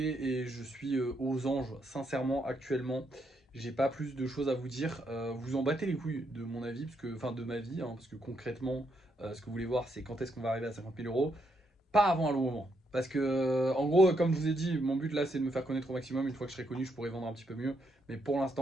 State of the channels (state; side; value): normal; both; correlation 0.77